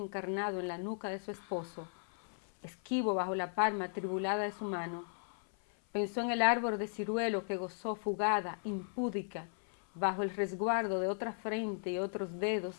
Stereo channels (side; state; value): right; silent; 54 dB below the other